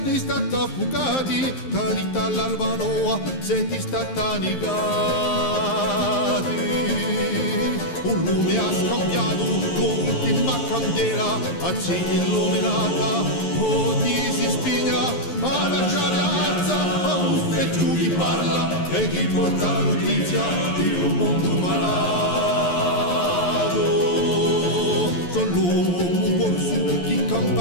stati affogati, carità all'Albanoa, siete stati annegati. Un lume ha scambiato con l'ultima candela, accende illuminata, o ti si spigna, ma lasciare alza, e giù chi parla, e chi porta notizia di un mondo malato. Sono l'uomo corso, chi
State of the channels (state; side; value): late; right; 11 ms